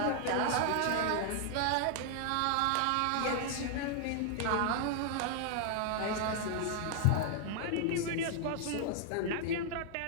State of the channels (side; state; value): both; different; correlation 0.00